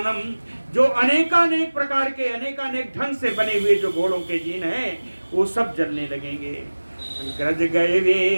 जो अनेकानेक प्रकार के अनेकानेक ढंग से बने हुए जो घोड़ों के जीन हैं वो सब जलने लगेंगे। ग्रज गए वे,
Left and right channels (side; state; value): both; inverted; correlation -1.00